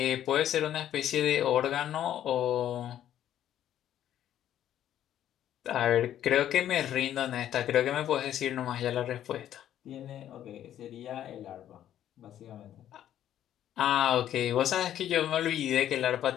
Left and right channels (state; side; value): quieter; right; 11.3 dB